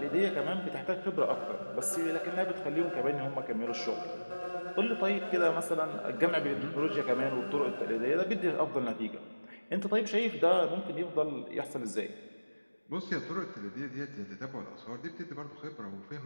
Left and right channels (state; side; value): inverted; both; correlation -1.00